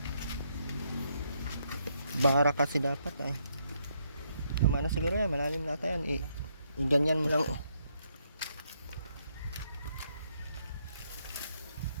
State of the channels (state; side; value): inverted; both; correlation -0.74